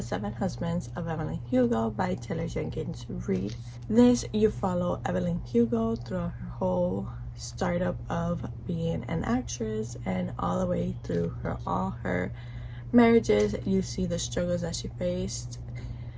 Seven Husbands of Evelyn Hugo by Taylor Jenkins Reid. This, you follow Evelyn Hugo throughout her whole startup of being an actress and all the way through all her marriages. You see the struggles that she faced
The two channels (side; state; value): both; identical; correlation 1.00